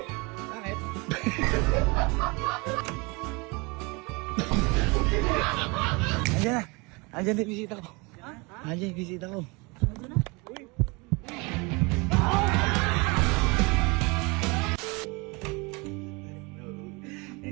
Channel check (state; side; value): quieter; left; 27.5 dB